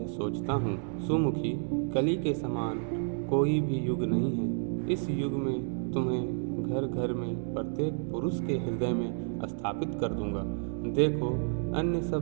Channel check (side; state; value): left; silent; 56 dB below the other